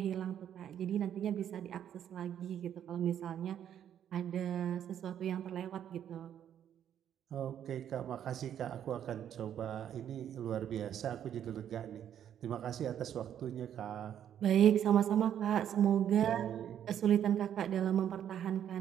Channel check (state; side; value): quieter; left; 9.8 dB